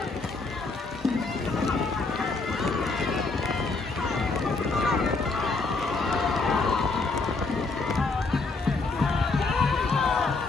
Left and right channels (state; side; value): quieter; right; 3.8 dB